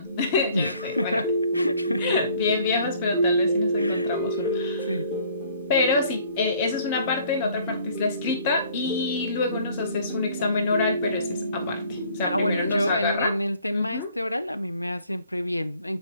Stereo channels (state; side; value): inverted; both; correlation -0.57